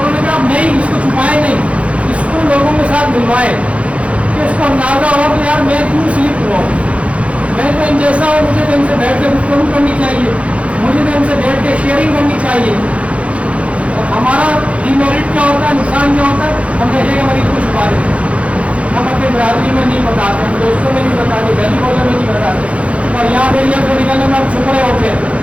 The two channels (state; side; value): late; left; 0.063 ms